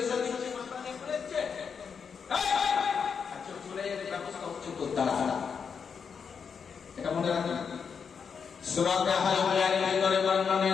দিচ্ছে, মাথা নিয়ে পড়েছে। আচ্ছা চলে এর ব্যবস্থা হচ্ছে তো তারা এটা মনে রাখবেন। সূরা কাহফের ভিতরে বর্ণনা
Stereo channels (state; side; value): quieter; right; 6.3 dB